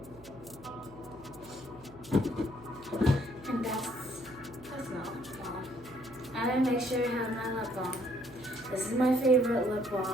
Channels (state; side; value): noise; right; hum, 21 dB below the sound